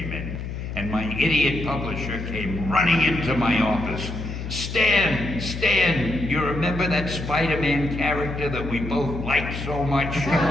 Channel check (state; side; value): noise; left; hum, 6 dB below the sound